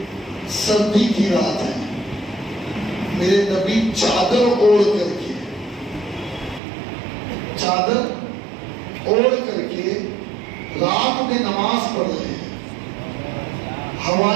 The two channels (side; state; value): left; drops out; at 6.6 s